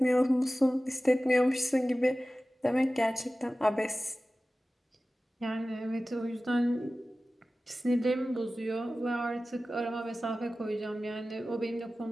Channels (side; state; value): both; normal; correlation 0.96